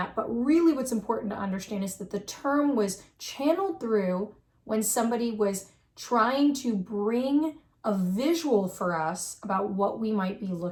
But really what's important to understand is that the term was channeled through when somebody was trying to bring a visual for us about what we might be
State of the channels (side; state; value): both; identical; correlation 1.00